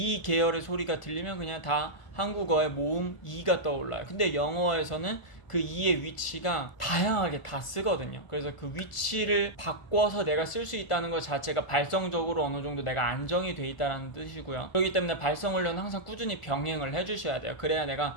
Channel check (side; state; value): right; late; 1.4 ms